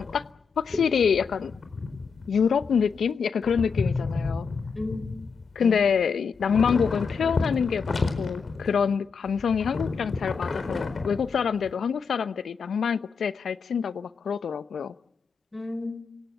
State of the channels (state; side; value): quieter; right; 5.7 dB